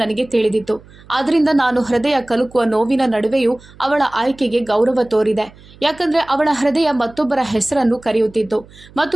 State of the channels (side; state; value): right; noise; hum, 23 dB below the sound